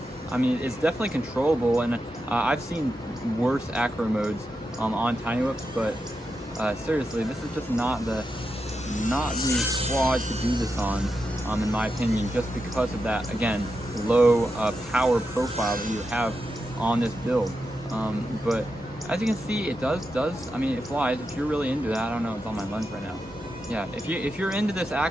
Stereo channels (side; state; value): both; normal; correlation 0.87